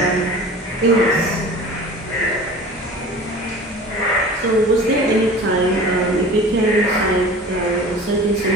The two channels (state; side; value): normal; both; correlation 0.40